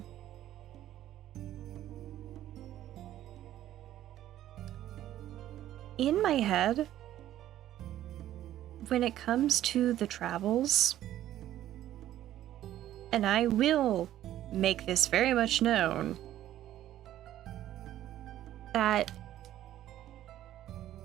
In my head, when it comes to the travels, and I will make this very much known, that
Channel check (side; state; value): left; quieter; 12.8 dB